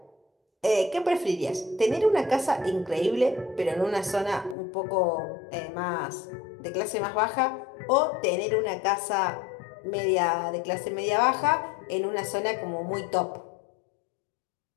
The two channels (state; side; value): drops out; right; at 4.5 s